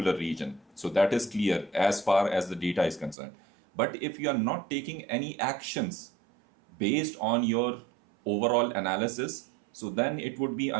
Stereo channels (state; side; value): drops out; left; at 3.2 s